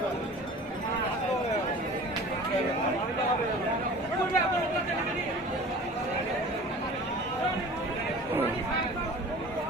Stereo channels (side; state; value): both; normal; correlation 0.41